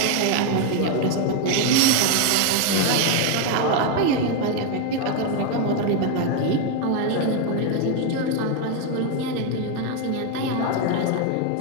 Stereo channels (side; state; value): both; different; correlation 0.01